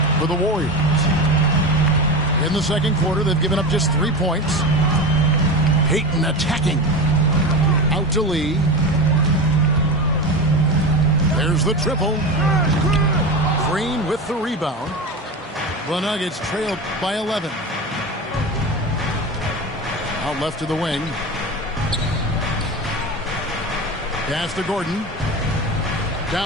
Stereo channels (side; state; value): both; normal; correlation 0.24